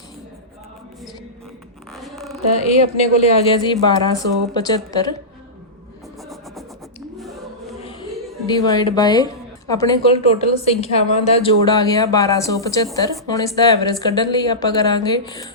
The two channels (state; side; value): normal; both; correlation -0.16